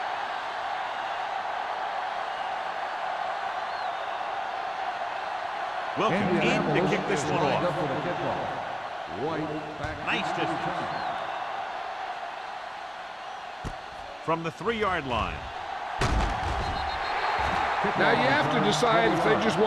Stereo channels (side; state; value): both; identical; correlation 1.00